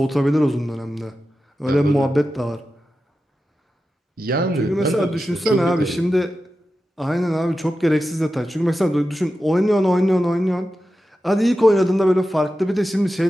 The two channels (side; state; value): both; normal; correlation 0.92